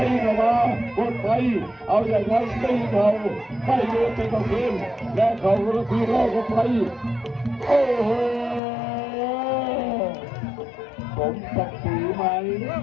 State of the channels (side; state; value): right; drops out; at 8.6 s